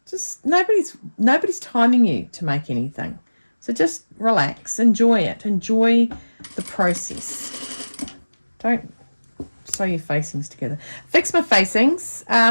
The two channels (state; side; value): inverted; both; correlation -1.00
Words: Just nobody's timing you to make anything. So just relax, enjoy it, enjoy the process. Don't sew your facings together. Fix my facings.